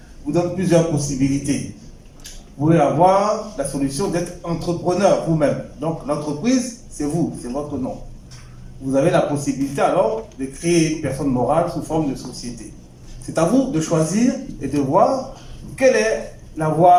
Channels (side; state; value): both; identical; correlation 1.00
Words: vous donne plusieurs possibilités. Vous pouvez avoir la solution d'être entrepreneur vous-même. Donc l'entreprise, c'est vous, c'est votre nom. Vous avez la possibilité alors de créer une personne morale sous forme de société. C'est à vous de choisir et de voir quelle est la